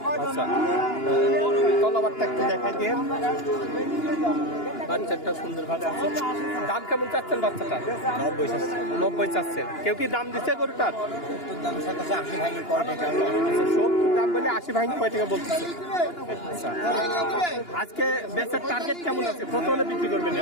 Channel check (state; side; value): late; right; 2.9 ms